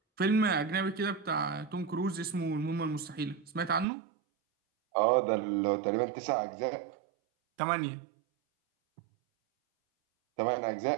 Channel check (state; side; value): drops out; left; at 3.9 s